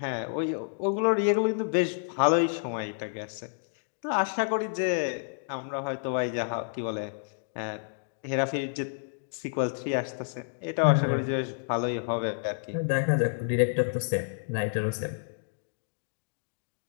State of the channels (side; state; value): right; silent; digital silence